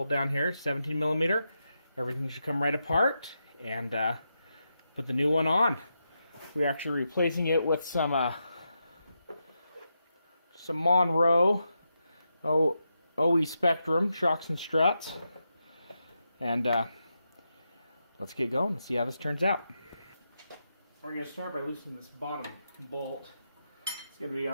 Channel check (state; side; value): inverted; both; correlation -0.86